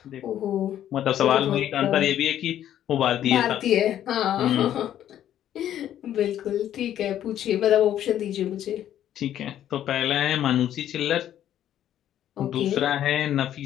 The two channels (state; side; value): quieter; right; 11.2 dB